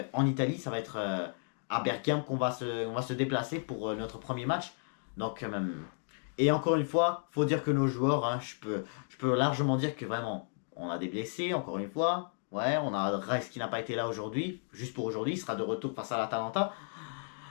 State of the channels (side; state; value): right; silent; 56 dB below the other